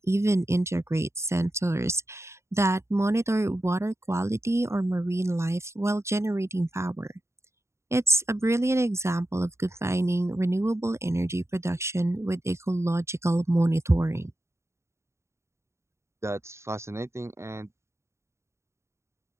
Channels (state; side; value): late; left; 0.13 ms